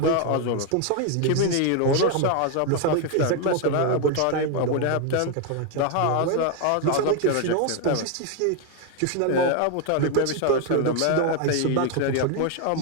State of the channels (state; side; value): different; both; correlation 0.01